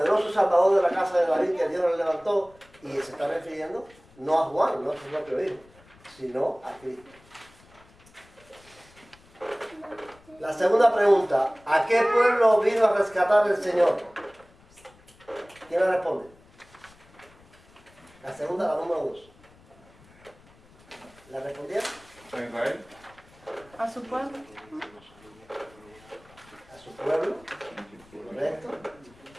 Salvador de la casa de David que Dios le levantó, y se está refiriendo no a Juan, no a su propio hijo, sino a Cristo. La segunda pregunta, ¿a qué pueblo vino a rescatar el Señor? ¿Quién la responde? La segunda, la número 2. ¿La respondieron? ¿A Israel? A su pueblo. A su pueblo, correcto.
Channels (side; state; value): left; noise; rumble, 27 dB below the sound